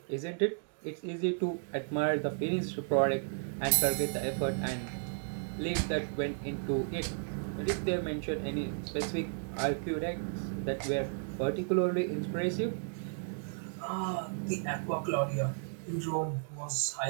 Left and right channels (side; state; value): left; silent; 55 dB below the other